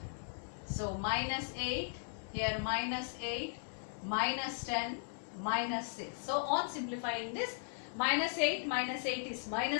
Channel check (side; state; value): right; silent; 53 dB below the other